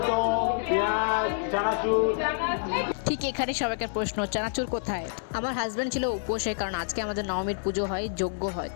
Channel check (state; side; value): silent; right; digital silence